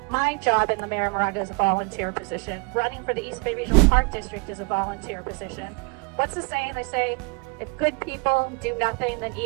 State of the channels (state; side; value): quieter; left; 30.2 dB